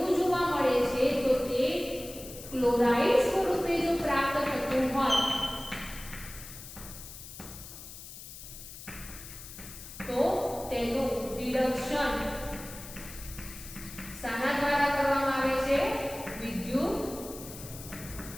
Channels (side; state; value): left; noise; hiss, 13 dB below the sound